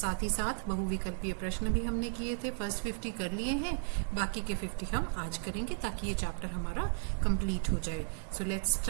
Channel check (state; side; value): silent; left; 55 dB below the other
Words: ही साथ बहुविकल्पीय प्रश्न भी हमने किए थे। फर्स्ट 50 कर लिए हैं, बाकी के 50 हम आज करेंगे ताकि ये चैप्टर हमारा कंप्लीट हो जाए। So let's